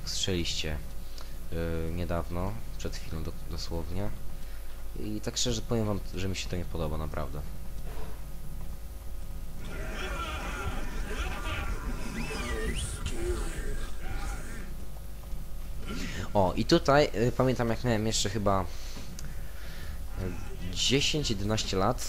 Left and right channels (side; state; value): both; identical; correlation 1.00